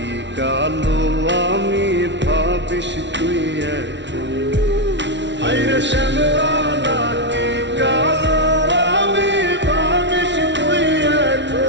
কালো আমি ভাবিস তুই এখন। হায়রে শ্যামলা নাকি কালো আমি ভাবিস তুই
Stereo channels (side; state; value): left; late; 0.52 ms